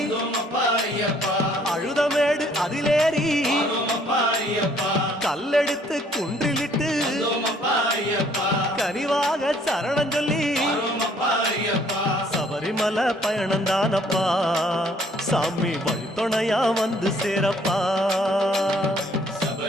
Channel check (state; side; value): normal; both; correlation 0.62